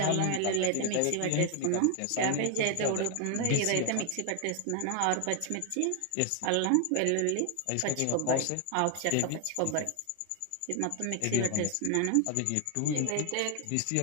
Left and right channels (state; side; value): different; both; correlation 0.00